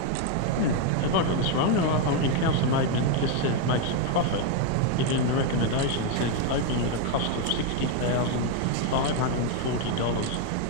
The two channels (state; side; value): different; both; correlation 0.01